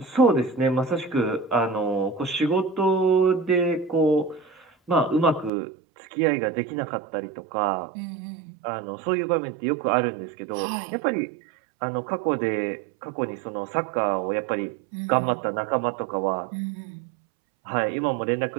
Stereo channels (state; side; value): drops out; left; at 5.5 s